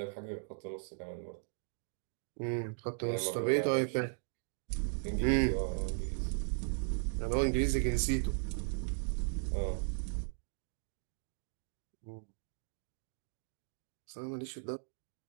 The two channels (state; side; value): silent; left; digital silence